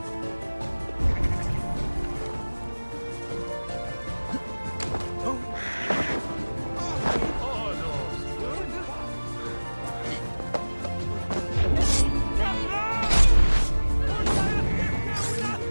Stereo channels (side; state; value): both; inverted; correlation -1.00